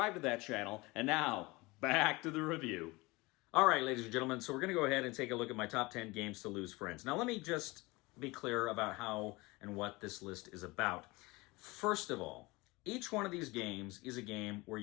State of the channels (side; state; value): right; quieter; 23.3 dB